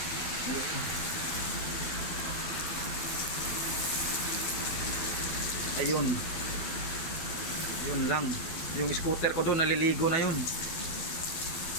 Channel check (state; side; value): late; right; 12 ms